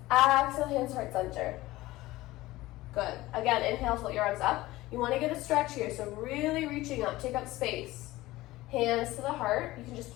Exhale, hands heart center. Good. Again, inhale, float your arms up. You want to get a stretch here, so really reaching up. Take up space. Hands to the heart. You can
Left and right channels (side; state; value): right; quieter; 18.1 dB